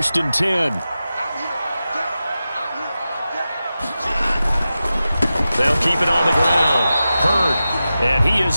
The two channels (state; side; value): inverted; both; correlation -0.93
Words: and 10. They'll keep it on the ground. Hurd. And he